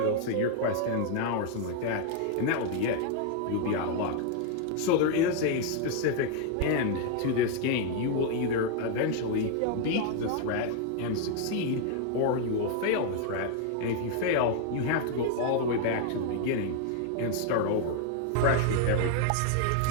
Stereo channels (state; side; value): different; both; correlation 0.00